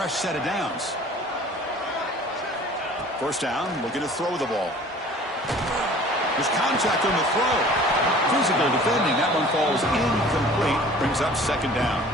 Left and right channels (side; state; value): both; normal; correlation 0.47